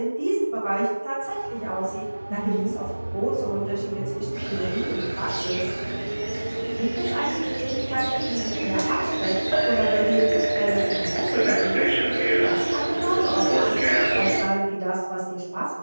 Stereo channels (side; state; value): both; inverted; correlation -1.00